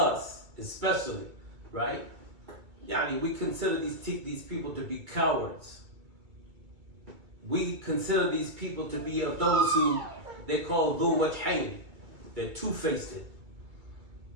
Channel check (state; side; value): late; left; 2.3 ms